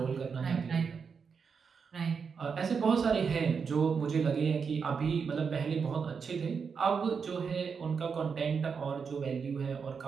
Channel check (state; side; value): quieter; left; 5.9 dB